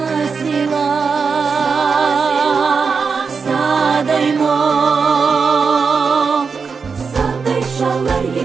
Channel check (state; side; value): quieter; left; 5.3 dB